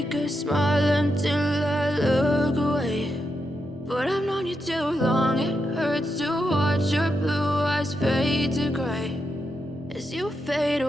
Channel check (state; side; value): normal; both; correlation 0.84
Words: a smile until I look away. But I've known you too long, it hurts to watch your blue eyes fade to gray as you fade